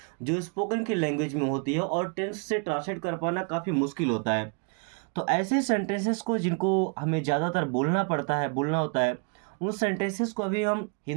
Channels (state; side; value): quieter; left; 36.4 dB